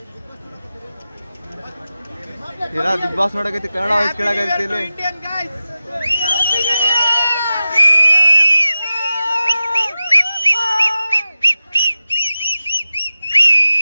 ಬಿಗ್ ಬಾಸ್ ನೋಡಕೈತಿ, ಕನ್ನಡ ವಾಯ್ಸ್ ಕೇಳಕೈತಿ ಇಲ್ಲಿ.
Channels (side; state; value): both; inverted; correlation -0.94